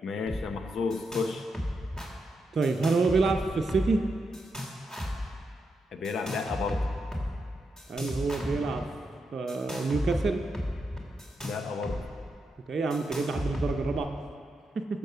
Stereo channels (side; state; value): both; normal; correlation 0.84